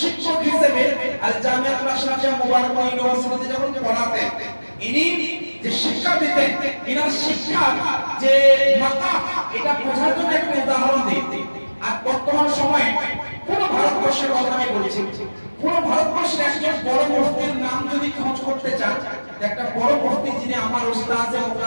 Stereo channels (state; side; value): inverted; both; correlation -1.00